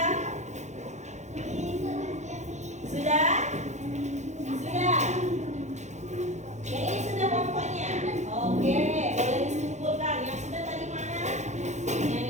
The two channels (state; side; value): late; left; 0.34 ms